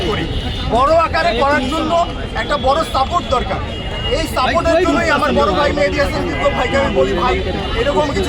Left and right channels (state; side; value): identical; both; correlation 1.00